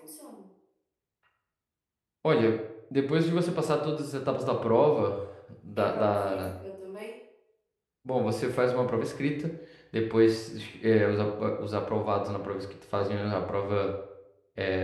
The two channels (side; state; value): both; identical; correlation 1.00